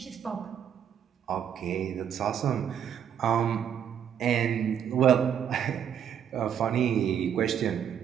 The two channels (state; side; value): quieter; left; 8.9 dB